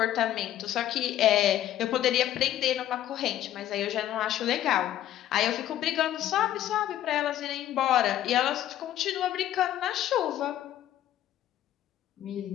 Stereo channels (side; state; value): right; quieter; 12.3 dB